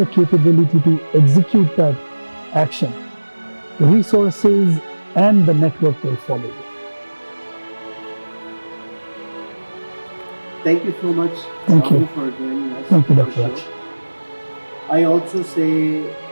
capability to execute that action, the resources and the network will follow you. Thank you so much, Thank Rahul, you. for joining us. Thank you, for Dr. the Raj. show. I also say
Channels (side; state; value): both; inverted; correlation -1.00